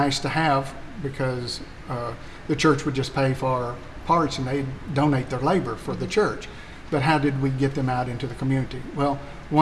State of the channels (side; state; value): both; identical; correlation 1.00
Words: to have because the church would just pay for parts and they'd donate their labor for the church. But how did we get them out into the community? Well,